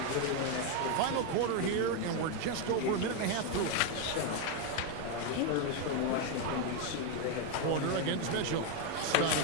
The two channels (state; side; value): different; both; correlation 0.01